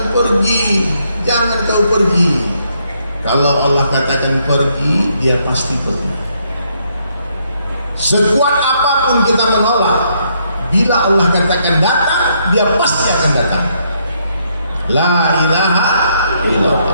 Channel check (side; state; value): both; inverted; correlation -0.73